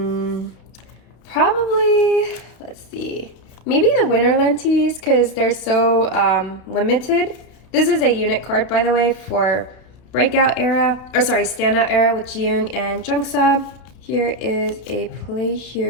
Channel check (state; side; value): late; right; 32 ms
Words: Probably, let's see, maybe the winter lenses because they're so limited. This is a unit card, by the way, for breakout era, or sorry, standout era with Jiyoung and Jungsa. Here is a play